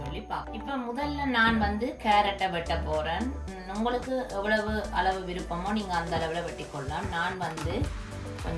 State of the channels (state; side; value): identical; both; correlation 1.00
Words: பார்க்கலாம். இப்ப முதல்ல நான் கேரட்டை வெட்ட போறேன். உங்களுக்கு எவ்வளவு அளவு விருப்பமோ நீங்க அந்த அளவுல வெட்டிக்கொள்ளலாம். நான்